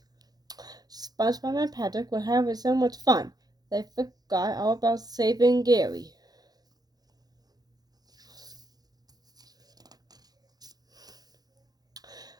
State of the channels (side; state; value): left; late; 0.19 ms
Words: SpongeBob and Patrick were having so much fun, they forgot all about saving Gary.